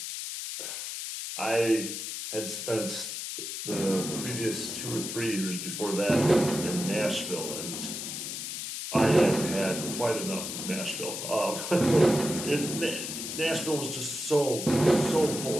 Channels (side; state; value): left; noise; hiss, 6 dB below the sound